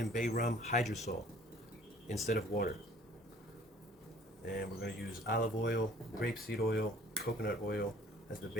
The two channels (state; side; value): normal; both; correlation 0.53